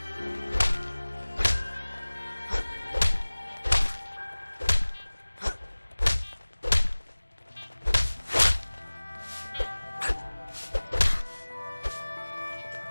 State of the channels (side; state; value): both; inverted; correlation -1.00